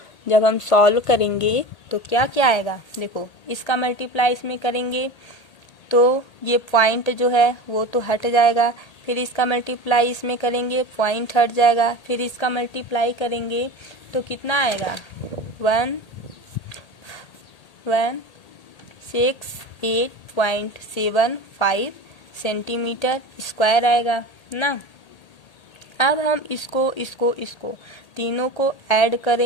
जब हम सॉल्व करेंगे तो क्या क्या आएगा, देखो इसका मल्टीप्लाई इसमें करेंगे तो ये पॉइंट जो है वो तो हट जाएगा, फिर इसका मल्टीप्लाई इसमें करेंगे पॉइंट हट जाएगा, फिर इसका मल्टीप्लाई करेंगे तो कितना आएगा 168.75 सेंटीमीटर स्क्वायर आएगा ना। अब हम इसको तीनों को ऐड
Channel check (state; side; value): late; right; 1.8 ms